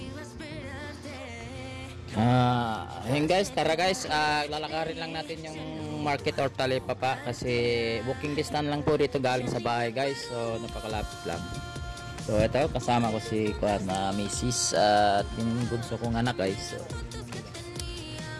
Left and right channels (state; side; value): identical; both; correlation 1.00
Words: Ayun guys, tara guys, lalakarin lang natin yung market or Talipapa kasi walking distance lang po dito galing sa bahay guys, so napakalapit lang. So ito, kasama ko si Mrs. At yung bunso kong anak guys. So